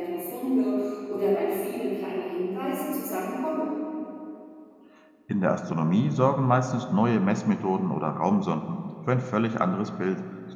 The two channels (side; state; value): both; identical; correlation 1.00